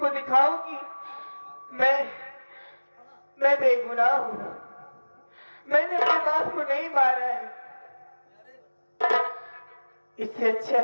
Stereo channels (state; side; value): inverted; both; correlation -1.00